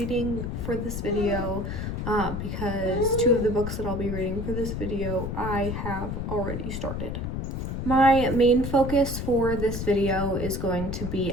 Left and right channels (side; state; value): left; noise; rumble, 4 dB below the sound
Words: for this video, because two of the books that I'll be reading for this video I have already started. My main focus for this video is going to